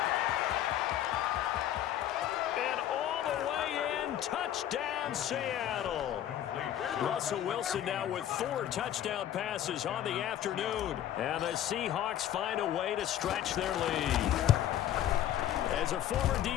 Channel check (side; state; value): right; quieter; 11.5 dB